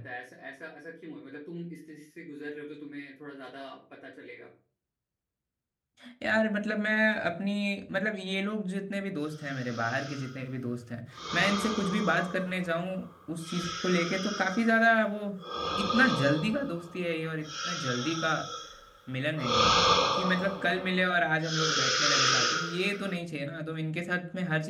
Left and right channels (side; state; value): both; identical; correlation 1.00